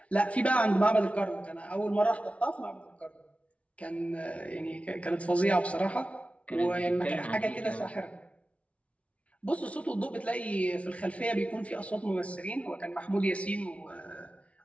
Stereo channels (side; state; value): right; late; 0.064 ms